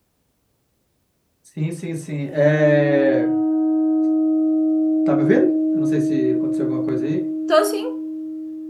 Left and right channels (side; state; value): both; identical; correlation 1.00